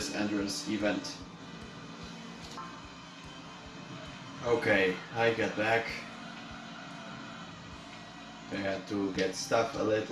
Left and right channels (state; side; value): identical; both; correlation 1.00